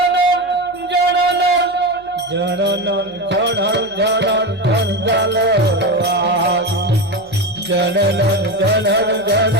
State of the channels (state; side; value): noise; left; hum, 28 dB below the sound